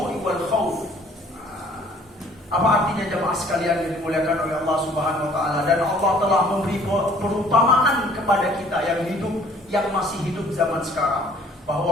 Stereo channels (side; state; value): both; normal; correlation 0.56